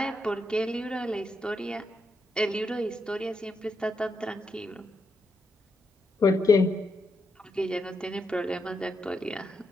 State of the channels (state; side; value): normal; both; correlation 0.82